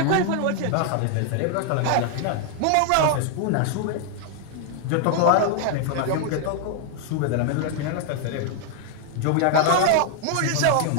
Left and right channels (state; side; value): different; both; correlation 0.00